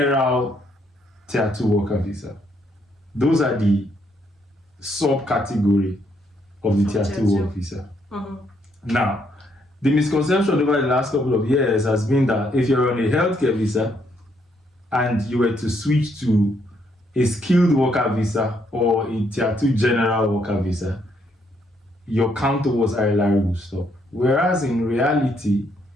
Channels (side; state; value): both; normal; correlation 0.73